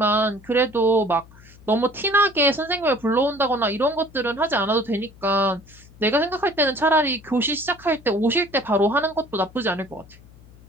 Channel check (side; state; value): left; noise; hum, 23 dB below the sound